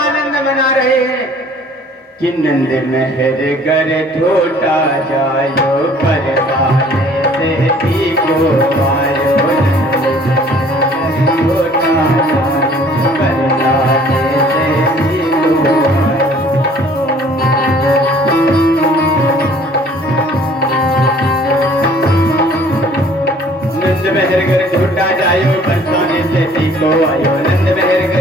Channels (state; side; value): normal; both; correlation 0.54